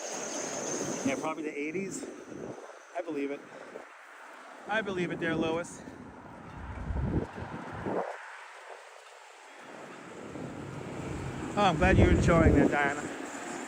Yeah, probably the 80s. I believe it. I believe it there, Lois. Oh, I'm glad you're enjoying that, Diana.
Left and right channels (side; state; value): both; identical; correlation 1.00